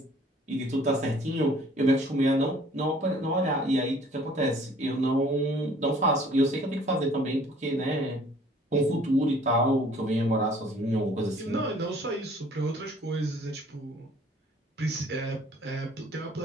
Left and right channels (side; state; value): both; normal; correlation 0.55